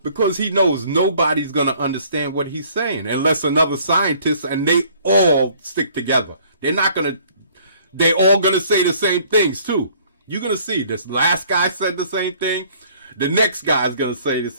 Because he knows nobody's going to understand what he's saying unless another scientist, and they all stick together. They all going to say the same things too. You're going to see this last guy said the same thing. The next guy's going to say the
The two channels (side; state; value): both; inverted; correlation -0.57